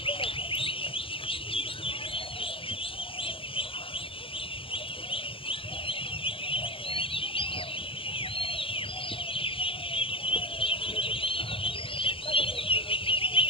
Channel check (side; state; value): right; late; 0.26 ms